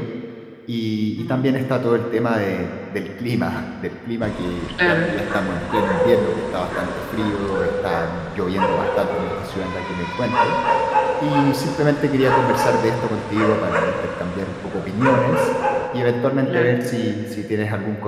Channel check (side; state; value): both; identical; correlation 1.00